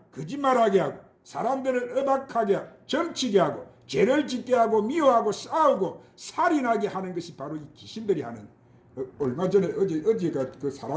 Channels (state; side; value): identical; both; correlation 1.00